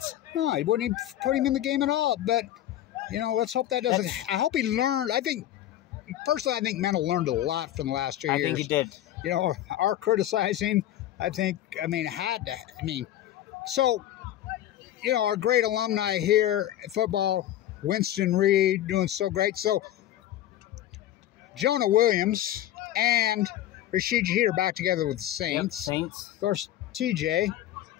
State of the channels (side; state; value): right; quieter; 12.8 dB